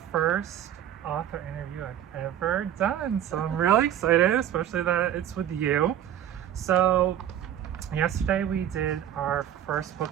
first author interview I've ever done, so I'm really excited, especially that it's with you. So yesterday we did our first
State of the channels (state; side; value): quieter; left; 10.7 dB